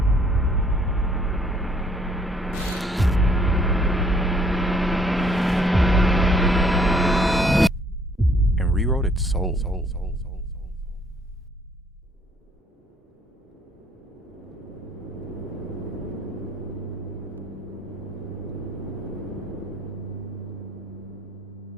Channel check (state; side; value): normal; both; correlation 0.63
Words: And rewrote its soul.